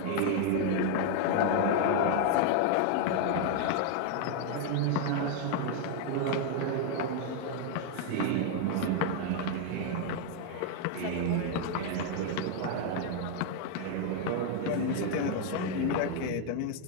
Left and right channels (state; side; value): different; both; correlation 0.01